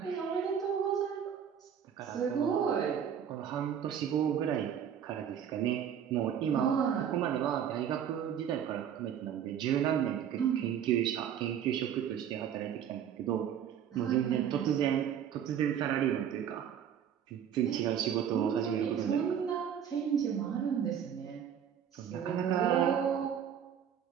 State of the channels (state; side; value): quieter; left; 8.8 dB